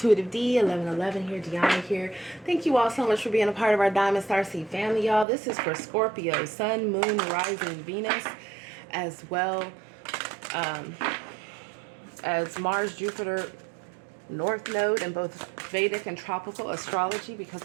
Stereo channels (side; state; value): left; drops out; at 5.2 s